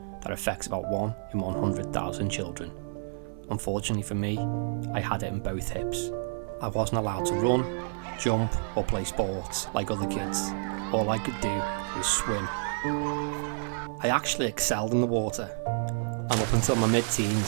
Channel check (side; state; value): left; silent; 58 dB below the other